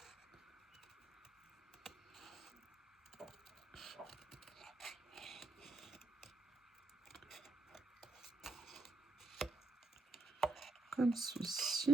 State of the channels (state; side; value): quieter; left; 3.1 dB